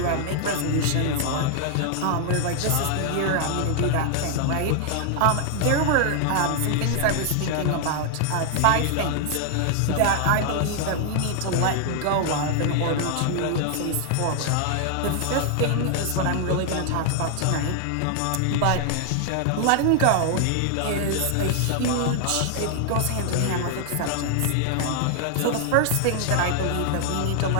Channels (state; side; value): different; both; correlation 0.00